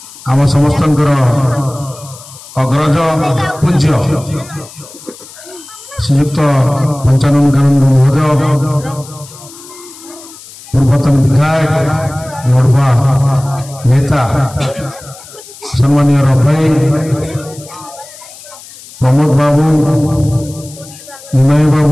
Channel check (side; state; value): left; noise; hiss, 19 dB below the sound